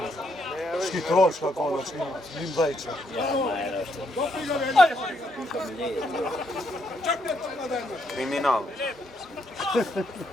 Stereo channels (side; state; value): both; normal; correlation 0.75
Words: Shki troška koda, shki njim dhejče. Kriminal.